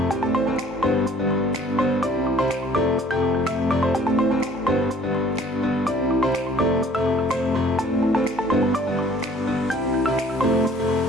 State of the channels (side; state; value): both; normal; correlation 0.55